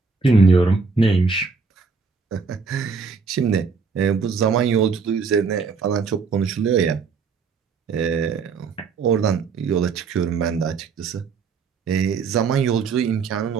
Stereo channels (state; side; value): quieter; left; 5.0 dB